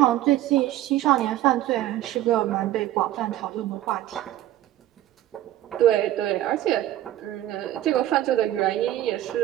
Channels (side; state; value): left; quieter; 13.7 dB